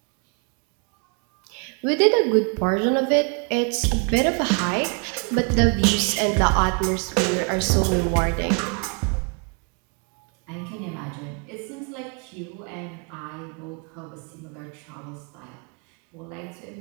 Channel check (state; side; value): quieter; left; 36.5 dB